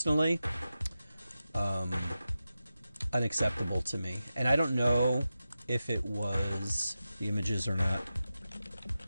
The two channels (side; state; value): both; inverted; correlation -0.92